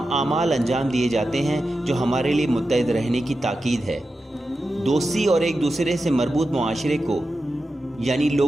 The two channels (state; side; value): normal; both; correlation 0.91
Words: اعمال انجام دیے جاتے ہیں جو ہمارے لیے متحد رہنے کی تاکید ہے۔ دوستی اور ایک دوسرے سے مربوط معاشرے کو، یعنی